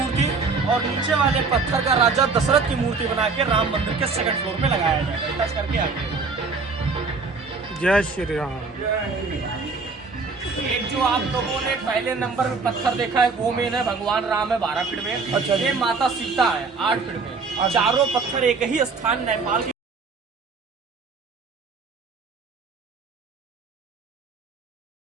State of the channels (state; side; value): quieter; left; 4.4 dB